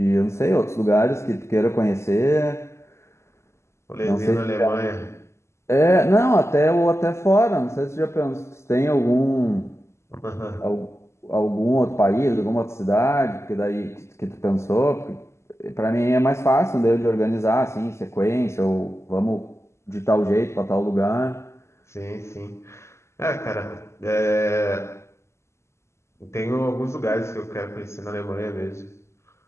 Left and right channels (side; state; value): right; late; 0.13 ms